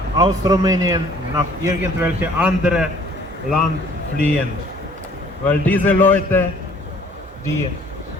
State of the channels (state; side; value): normal; both; correlation 0.56